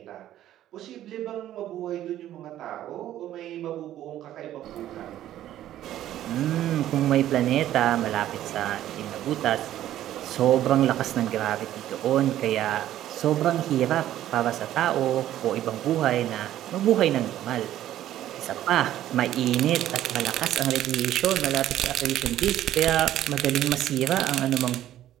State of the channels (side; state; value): left; quieter; 12.7 dB